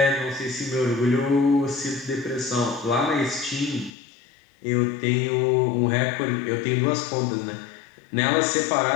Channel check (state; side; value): drops out; right; at 3.9 s